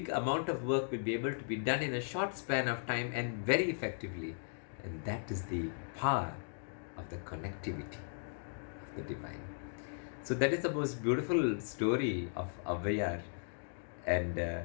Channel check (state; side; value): silent; right; digital silence